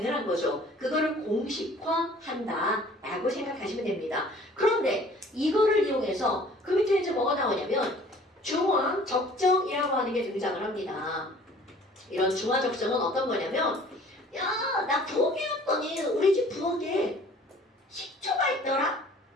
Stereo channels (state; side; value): normal; both; correlation 0.51